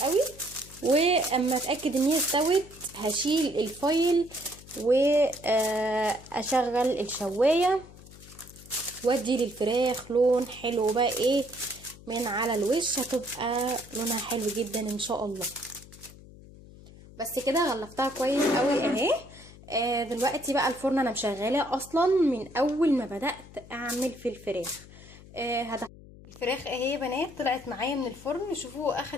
واما اتاكد ان هي استوت هشيل الفويل واشغل الشوايه وادي للفراخ لون حلو بقى ايه من على الوش، هتبقى لونها حلو جدا ان شاء الله. بس كده غلفتها كويس قوي اهي. دلوقتي بقى الفرن انا مشغلاه اصلا من اول ما بدات اعمل في الفراخ. الفراخ اهي يا بنات طلعت معايا من الفرن، شوفوا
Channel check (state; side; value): noise; left; hum, 20 dB below the sound